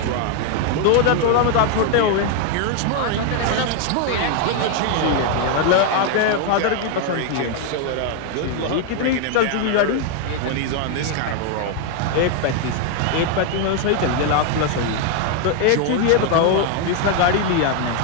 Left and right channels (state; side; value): different; both; correlation 0.01